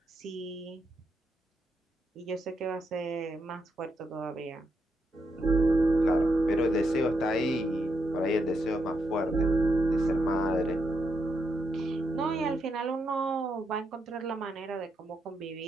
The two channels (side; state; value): both; normal; correlation 0.80